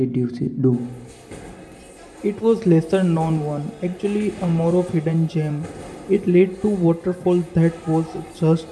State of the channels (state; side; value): identical; both; correlation 1.00